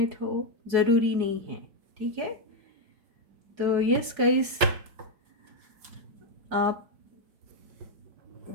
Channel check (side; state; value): left; late; 4.7 ms